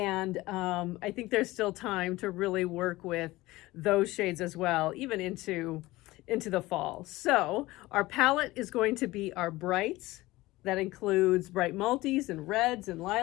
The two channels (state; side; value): quieter; right; 19.1 dB